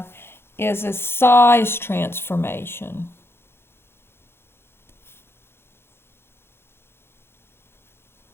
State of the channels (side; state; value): right; late; 0.11 ms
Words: is a size transformation.